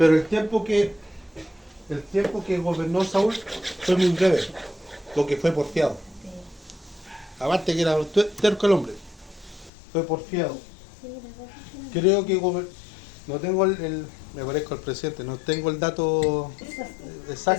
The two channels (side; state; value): right; drops out; at 9.7 s